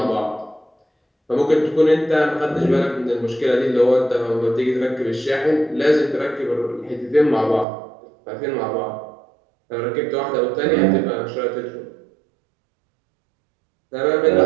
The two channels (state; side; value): drops out; left; at 7.7 s